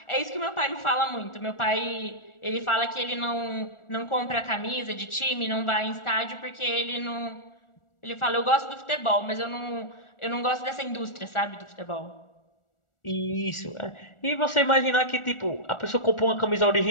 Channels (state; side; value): late; right; 1.4 ms